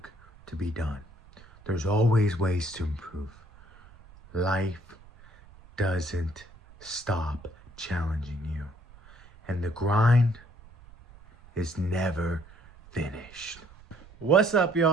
to be done. There's always ways to improve. Life doesn't stop challenging you. And the grind is never finished. What's up,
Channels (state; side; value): noise; right; rumble, 23 dB below the sound